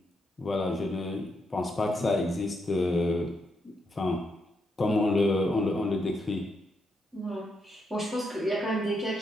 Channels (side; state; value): both; normal; correlation 0.80